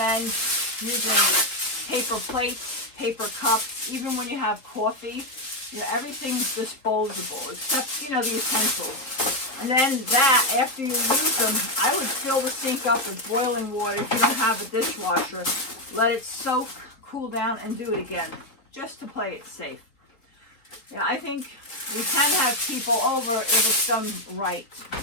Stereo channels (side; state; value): right; late; 3.9 ms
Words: using paper plates, paper cups, even when you have coffee. You know, everything's disposable except, you know, the utensils. And then that, after you use them, I would fill the sink up with boiling water if you don't have a dishwasher. Let it soak, cool down, and do it again, just to play it safe. Yeah, I think we can have people over if it's done right.